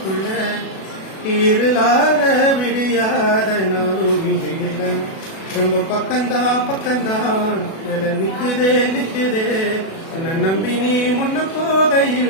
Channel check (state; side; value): late; right; 37 ms